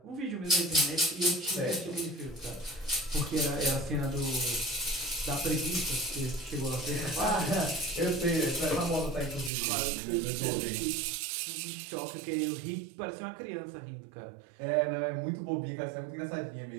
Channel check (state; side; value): drops out; left; at 9.5 s